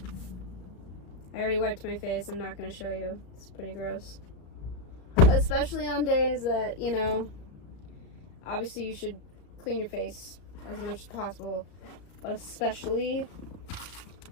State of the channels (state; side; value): late; right; 34 ms